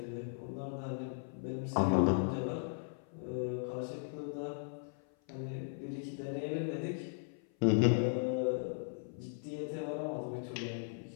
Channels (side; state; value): right; silent; 53 dB below the other